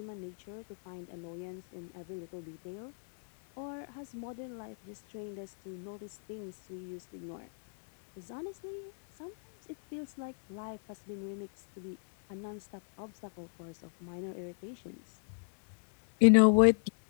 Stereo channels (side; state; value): right; silent; 55 dB below the other